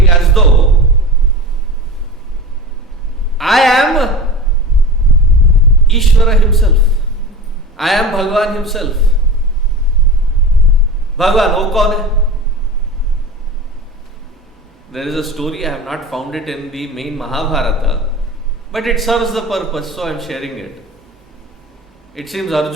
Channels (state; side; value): normal; both; correlation 0.31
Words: as though I am Ishvara himself. I am Bhagavan himself. Bhagavan, wo kaun hai? There is a story, I have not found it in the main Mahabharata, but it serves the purpose, so I am sharing it. It seems